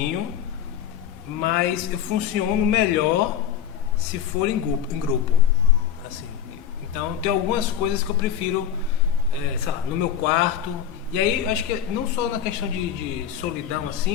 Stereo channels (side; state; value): right; quieter; 9.3 dB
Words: mas eu funciono melhor se for em grupo, assim. Então tem algumas coisas que eu prefiro, sei lá, no meu quarto. E aí eu acho que não só na questão de solidão